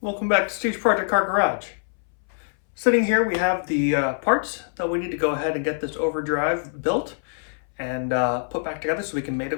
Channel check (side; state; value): right; silent; 62 dB below the other